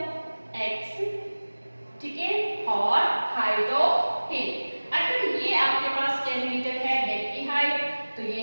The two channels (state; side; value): inverted; both; correlation -1.00